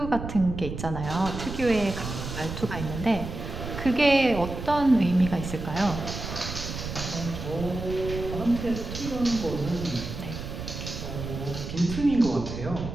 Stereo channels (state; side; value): noise; right; rumble, 7 dB below the sound